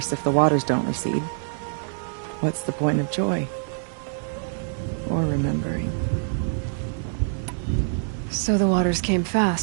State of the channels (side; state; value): left; silent; digital silence